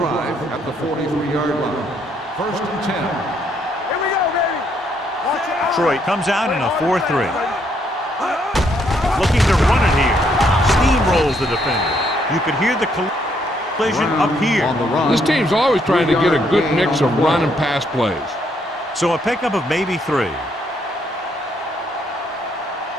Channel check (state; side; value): normal; both; correlation 0.72